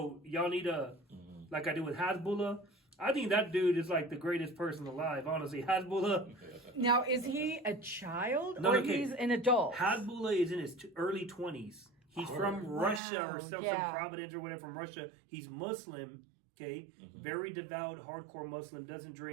y'all need a, like I do with Hasbullah, I think that dude is like the greatest person alive, honestly. Hasbullah. Now, is he a child No, or okay. he's an adult? Hasbullah is in his early 20s. He's from Russia or some Providence or whatever, from Russia. He's Muslim, okay? Very devout, hardcore Muslim. Doesn't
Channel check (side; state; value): left; drops out; at 13.0 s